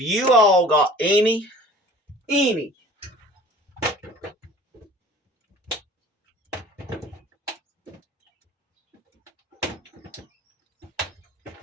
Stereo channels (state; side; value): normal; both; correlation 0.46